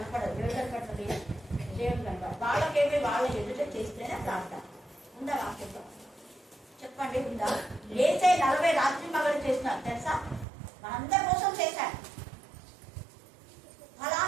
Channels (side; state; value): left; drops out; at 10.5 s